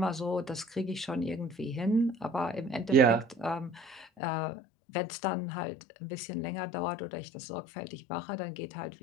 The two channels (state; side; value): drops out; right; at 4.0 s